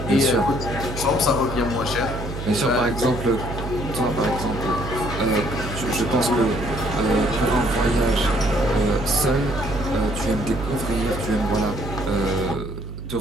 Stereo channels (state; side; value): noise; right; hum, 8 dB below the sound